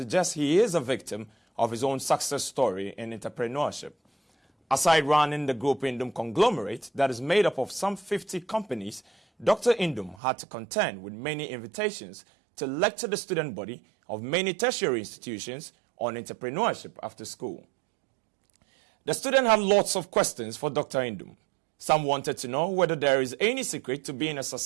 he is a victim of his own success story in entrepreneurship. Aside running the Groupe Nduom conglomerate that is made up of some 50 companies, Dr. Nduom had to contend with many invitations to lecture the student body of many tertiary institutions on entrepreneurship after school. The student had lots of questions for Dr. Nduom. Some wanted to know whether there is any secret to being a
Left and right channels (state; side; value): drops out; left; at 10.2 s